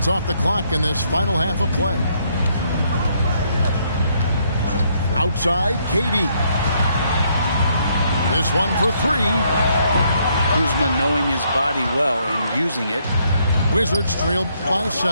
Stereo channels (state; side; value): inverted; both; correlation -0.71